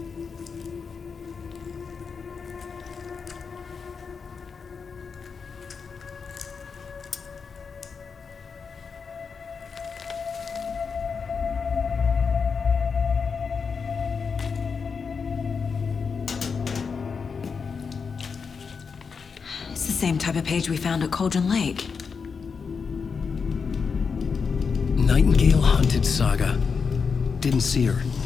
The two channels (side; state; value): right; quieter; 5.6 dB